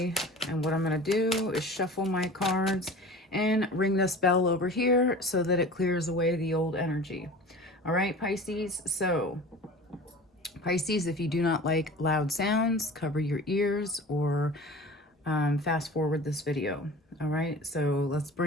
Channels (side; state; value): both; normal; correlation 0.39